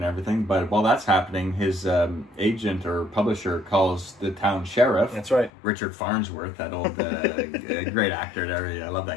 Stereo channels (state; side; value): drops out; right; at 5.5 s